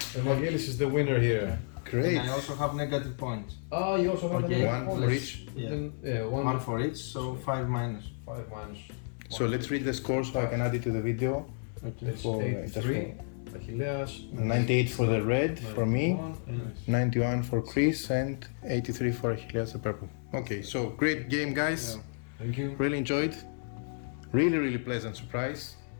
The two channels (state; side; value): silent; right; digital silence